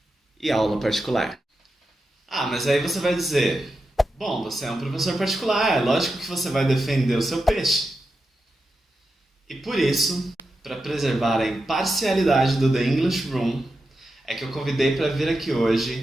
e aula particular. Ah, mas aí você vai dizer, bom, você é um professor particular, é lógico que você vai defender o seu peixe. E por isso, para preservar a imparcialidade do The English Room, é que eu convidei para vir aqui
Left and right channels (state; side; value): normal; both; correlation 0.89